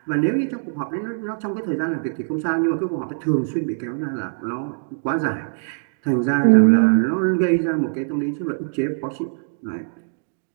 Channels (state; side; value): silent; left; 64 dB below the other